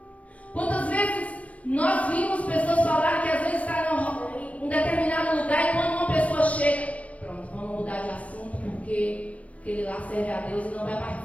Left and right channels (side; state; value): right; late; 0.065 ms